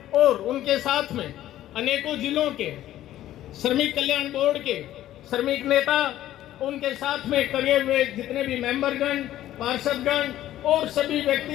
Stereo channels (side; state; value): right; quieter; 13.3 dB